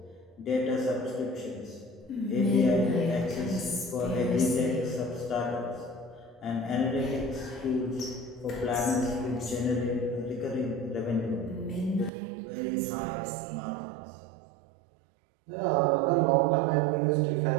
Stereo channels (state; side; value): drops out; left; at 12.1 s